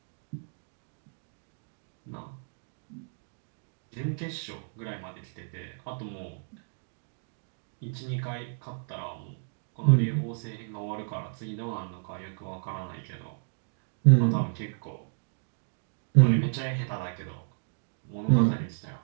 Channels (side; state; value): left; silent; digital silence